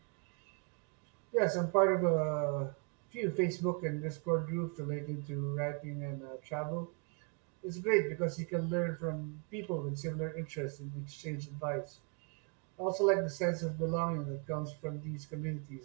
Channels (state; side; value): quieter; left; 34.7 dB